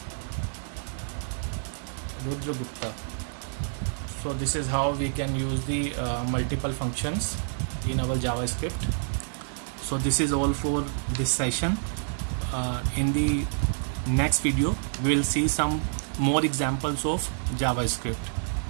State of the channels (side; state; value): left; silent; digital silence